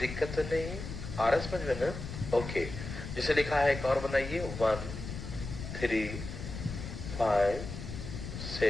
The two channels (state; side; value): noise; left; rumble, 8 dB below the sound